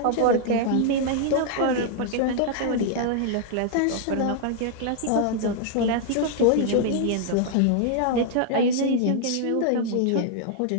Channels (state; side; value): different; both; correlation 0.00